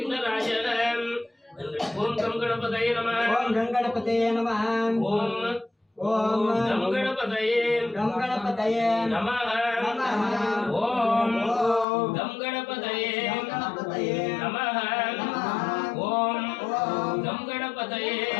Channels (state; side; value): drops out; right; at 11.9 s